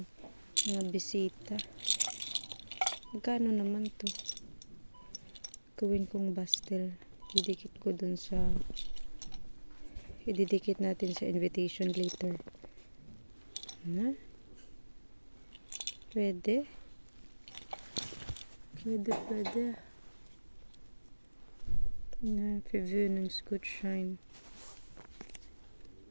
mga bisita. Magkano naman to? Gawin kong pastel. Didikit ko dun sa ididikit natin sa invitation later. Pwede. Preview ng Scoot Shine.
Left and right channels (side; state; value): both; inverted; correlation -1.00